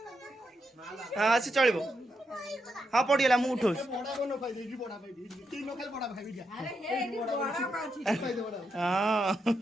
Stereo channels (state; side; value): normal; both; correlation 0.83